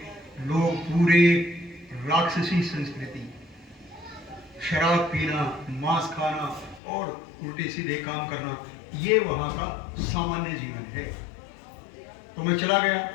लोग पूरे राक्षसी संस्कृति, शराब पीना, मांस खाना और उल्टे सीधे काम करना, ये वहां का सामान्य जीवन है। तो मैं चला गया।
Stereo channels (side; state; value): right; drops out; at 6.8 s